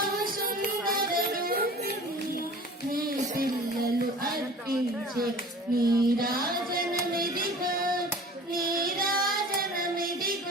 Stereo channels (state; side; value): normal; both; correlation 0.43